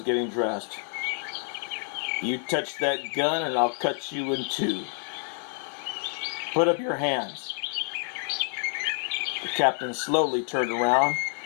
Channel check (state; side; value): silent; right; 56 dB below the other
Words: getting dressed, "You touch that gun and I'll cut you in two. Put up your hands." The captain slowly turned around,